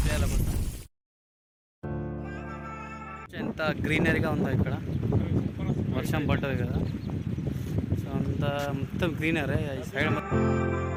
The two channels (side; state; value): both; identical; correlation 1.00